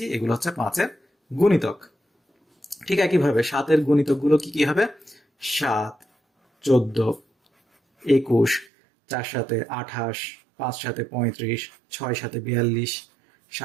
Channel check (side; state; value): left; drops out; at 8.7 s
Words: এগুলো হচ্ছে 5-এর গুণিতক। ঠিক একইভাবে 7-এর গুণিতকগুলো কি কি হবে? 7, 14, 21, 4 সাথে 28, 5 সাথে 35, 6 সাথে 42,